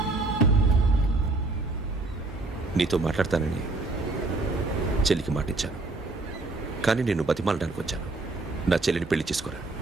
నీతో మాట్లాడతానని చెల్లికి మాటిచ్చాను, కానీ నేను బతిమాలడానికి వచ్చాను. నా చెల్లిని పెళ్లి చేసుకోరా.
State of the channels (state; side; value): quieter; left; 3.2 dB